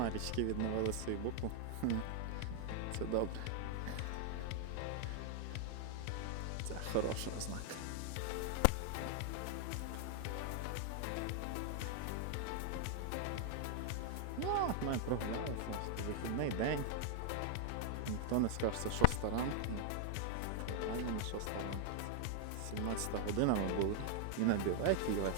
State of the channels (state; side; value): different; both; correlation 0.00